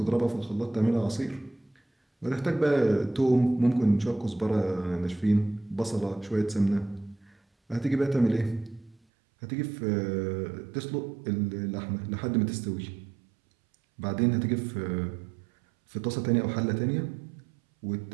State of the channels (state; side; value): drops out; left; at 9.0 s